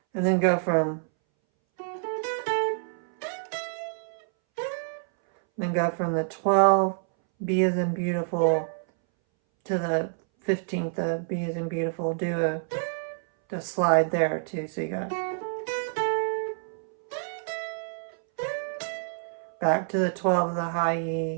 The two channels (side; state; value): left; silent; 60 dB below the other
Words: and then go from the 12, B is in beautiful, to the 15th of B is in beautiful. Do a slide there too. So you got back to the 12 of the high